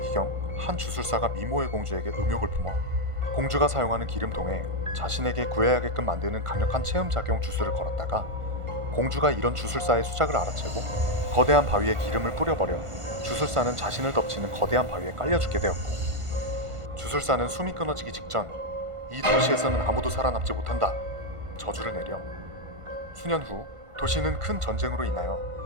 한 주술사가 미모의 공주에게 음욕을 품어 공주가 사용하는 기름통에 자신에게 구애하게끔 만드는 강력한 체음작용 주술을 걸었다가 공주가 이런 주술사의 수작을 알아채고 거대한 바위에 기름을 뿌려버려 주술사는 자신을 덮치는 거대한 바위에 깔려 죽게 되었고, 주술사는 숨이 끊어지기 직전 이 도시에서는 아무도 살아남지 못한다 저주를 내려 수년 후 도시는 큰 전쟁으로 인하여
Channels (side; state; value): left; late; 1.5 ms